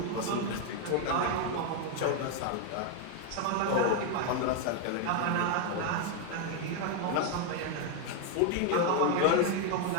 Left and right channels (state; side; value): different; both; correlation 0.01